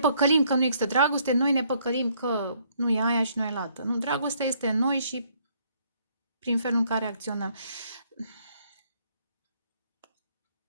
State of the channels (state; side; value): inverted; both; correlation -0.67